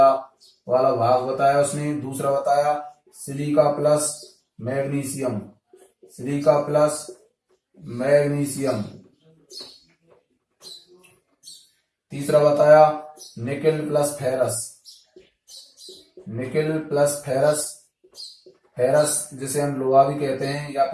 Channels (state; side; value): identical; both; correlation 1.00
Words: वाला भाग बताया उसने। दूसरा बताया सिलिका प्लस मैग्नीशियम। तीसरा बताया निकेल प्लस फेरस जिसे हम लोहा भी कहते हैं या